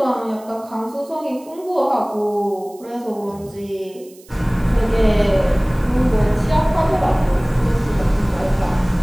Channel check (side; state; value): right; noise; hiss, 25 dB below the sound